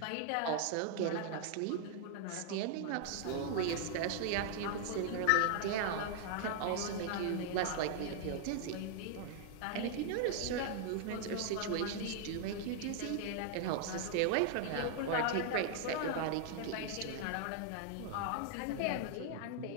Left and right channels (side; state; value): both; different; correlation 0.00